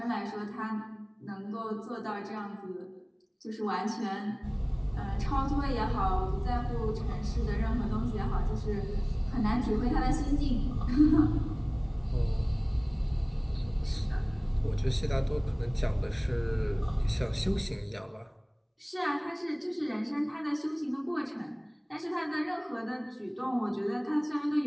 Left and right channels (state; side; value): identical; both; correlation 1.00